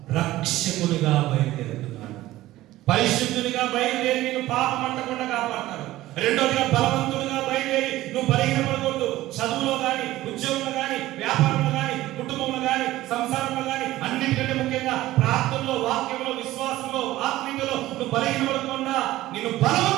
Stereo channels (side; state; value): left; quieter; 16.1 dB